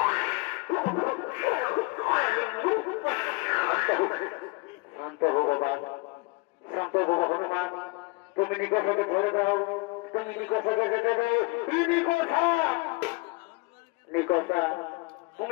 শান্ত হো বাবা, শান্ত হো হনুমান, তুমি নিকোষাকে ছেড়ে দাও, তুমি নিকোষাকে যেতে দাও। নিকোষা, নিকোষা,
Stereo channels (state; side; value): quieter; right; 26.4 dB